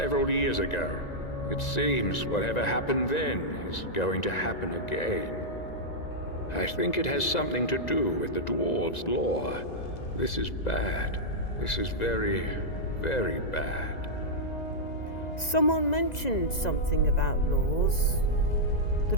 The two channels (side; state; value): right; late; 2.0 ms